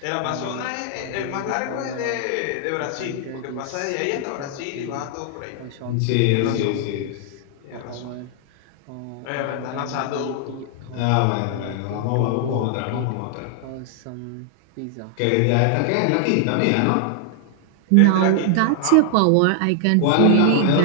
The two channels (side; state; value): both; different; correlation 0.00